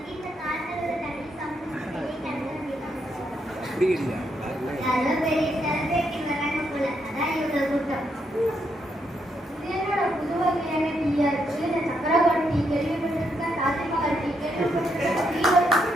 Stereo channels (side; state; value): both; normal; correlation 0.78